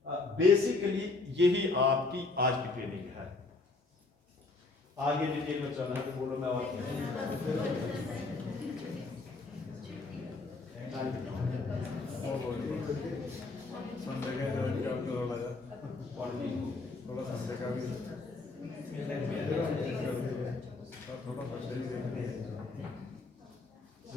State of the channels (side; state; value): right; quieter; 3.6 dB